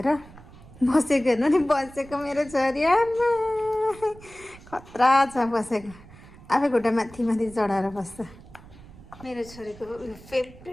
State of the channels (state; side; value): noise; right; rumble, 20 dB below the sound